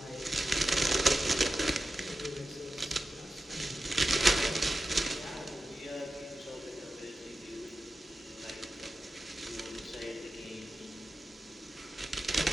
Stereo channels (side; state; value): both; normal; correlation 0.92